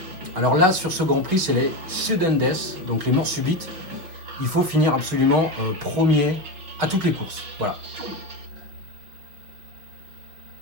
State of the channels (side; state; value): left; late; 5.9 ms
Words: Alors là, sur ce Grand Prix, c'est les sudden death, donc les morts subites. Il faut finir absolument premier à toutes les courses. Voilà.